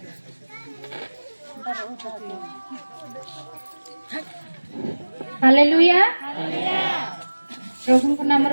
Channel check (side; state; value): both; inverted; correlation -1.00